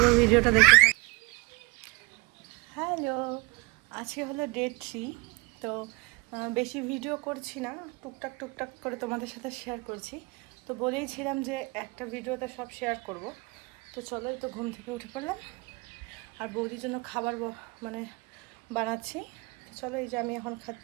ভিডিওটা দেখতে থাকো। হ্যালো, আজকে হলো ডে 3। তো বেশি ভিডিও করছি না, টুকটাক টুকটাক করে তোমাদের সাথে শেয়ার করছি। তো বলেইছিলাম যে একটা ভিডিওতে সব শেয়ার করব। তো চলো, এই তো ঘুম থেকে উঠে পড়লাম আর বৌদির জন্য খাবার মানে বানাচ্ছি। তো চলো, এই যে আমি এখন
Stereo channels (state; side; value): quieter; left; 27.1 dB